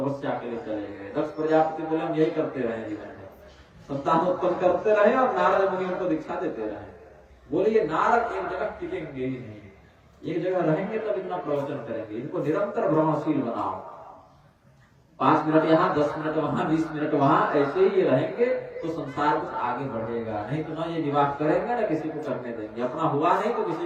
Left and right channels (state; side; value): identical; both; correlation 1.00